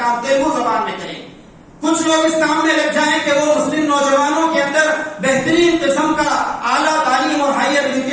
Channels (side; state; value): both; identical; correlation 1.00